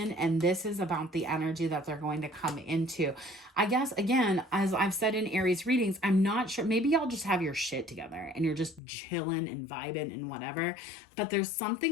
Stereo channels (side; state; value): right; drops out; at 8.8 s